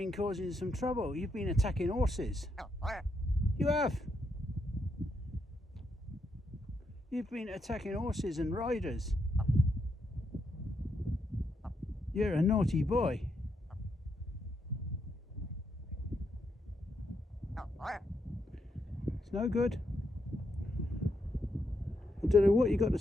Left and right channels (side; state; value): both; normal; correlation 0.80